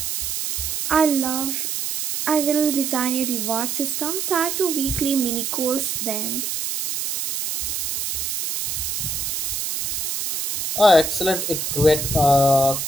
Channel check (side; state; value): right; noise; hiss, 2 dB below the sound